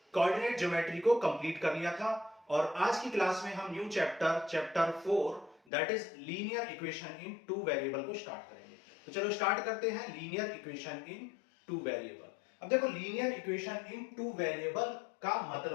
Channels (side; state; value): right; drops out; at 5.6 s